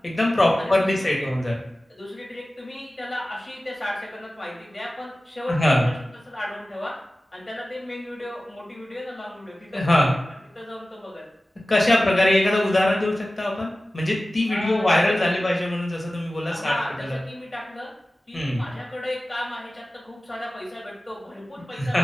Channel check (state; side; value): normal; both; correlation 0.96